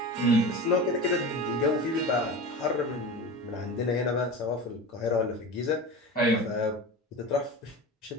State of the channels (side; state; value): both; normal; correlation 0.30